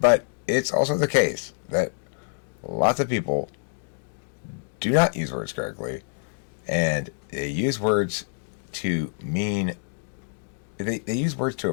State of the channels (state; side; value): silent; right; digital silence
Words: it's also the case that lots of people do not use words correctly, and they use words to mean, they use words to